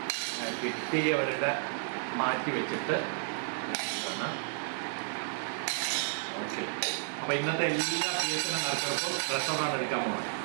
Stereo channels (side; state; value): left; silent; digital silence